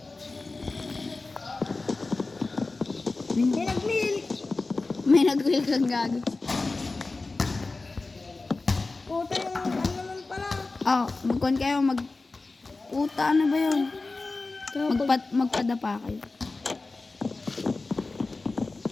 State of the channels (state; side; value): quieter; right; 3.5 dB